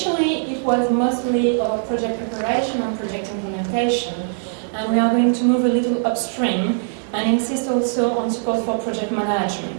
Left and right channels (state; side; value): silent; left; 60 dB below the other